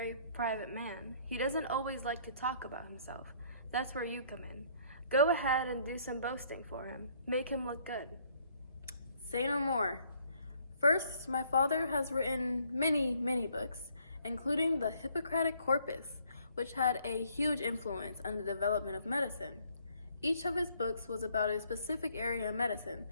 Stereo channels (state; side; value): inverted; both; correlation -0.64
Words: private man, he doesn't always like to talk about himself. That's where you come in. Go ahead and do some boasting for him. Make him look good. Say no more. First, my father has written many, many books, including the Hippocratic Corpus, which had a huge influence on the development of medicine. Each of his books was about a specific area of medicine,